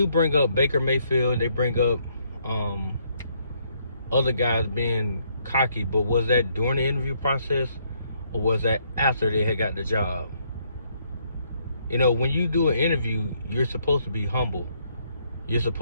bring up Baker Mayfield. They bring up other guys being cocky, but was that during the interview process or was that after they had got the job? You know, when you do an interview, you're supposed to be humble. You're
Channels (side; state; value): both; inverted; correlation -0.71